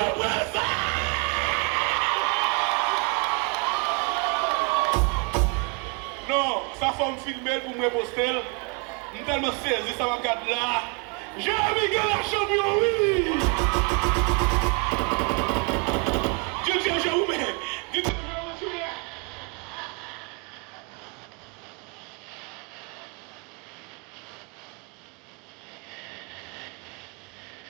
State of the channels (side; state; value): left; quieter; 32.5 dB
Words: Non, ça faut me filmer pour me poster. Je suis tellement saisi, ça va regarder là. Jérémy gagne la champion, oui! Dieu, j'ai où, mais. Dieu,